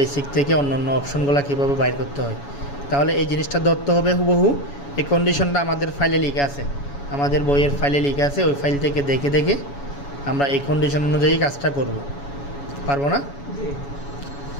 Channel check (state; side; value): late; right; 7.1 ms